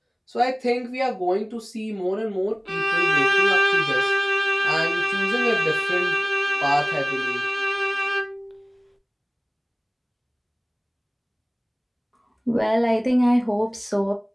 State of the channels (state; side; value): identical; both; correlation 1.00